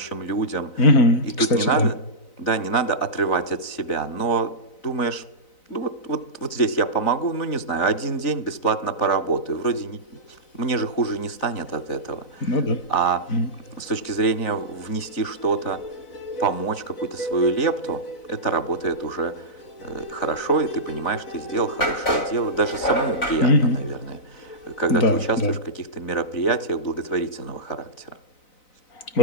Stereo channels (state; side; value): late; right; 4.0 ms